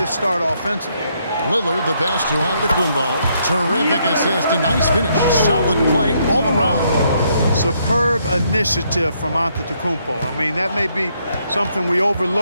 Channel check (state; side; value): inverted; both; correlation -0.73